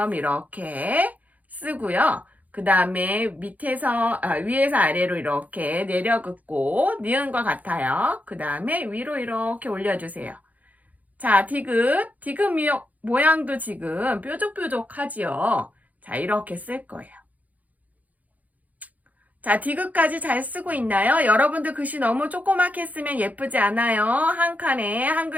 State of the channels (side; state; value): left; late; 0.078 ms